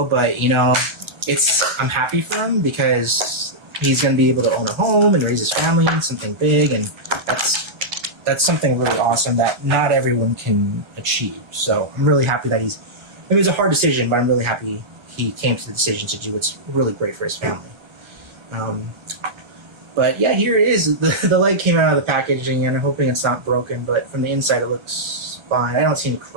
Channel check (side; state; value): left; late; 1.3 ms